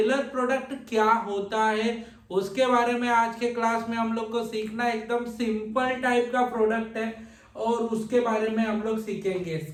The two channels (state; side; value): identical; both; correlation 1.00